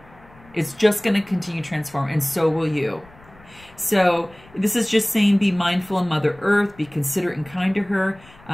It's just going to continue to transform, and so will you. So this is just saying, be mindful of Mother Earth, be considerate and kind to her.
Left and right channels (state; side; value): noise; left; rumble, 25 dB below the sound